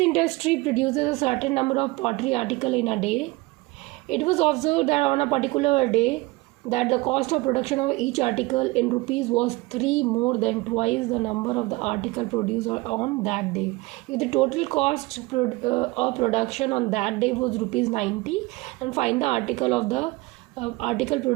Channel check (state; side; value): quieter; left; 22.5 dB